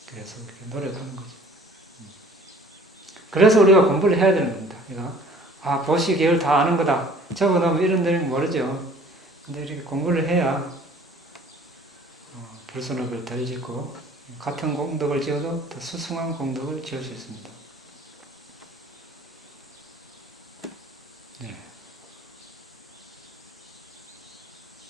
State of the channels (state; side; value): normal; both; correlation 0.52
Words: 그래서 이렇게 노력하는 거죠. 그래서 우리가 공부를 해야 되는 겁니다. 보시 계열 다 아는 거다. 적어놓으면 이런 데는 모르죠. 근데 이렇게 공부를 해야 불선업을 덜 짓고 같은 공덕을 지어도 더 수승한 공덕을 지을 수 있습니다. 네.